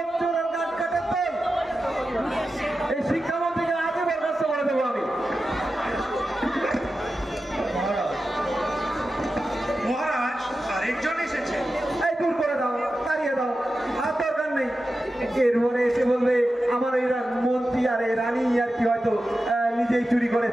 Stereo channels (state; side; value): normal; both; correlation 0.92